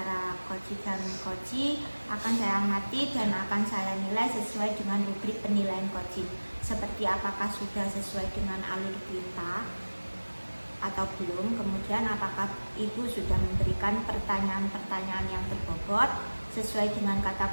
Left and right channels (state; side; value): inverted; both; correlation -1.00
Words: coach dan coach akan saya amati dan akan saya nilai sesuai dengan rubrik penilaian coaching, seperti apakah sudah sesuai dengan alur perintah atau belum, kemudian apakah ibu sudah memberikan pertanyaan-pertanyaan yang berbobot sesuai dengan kata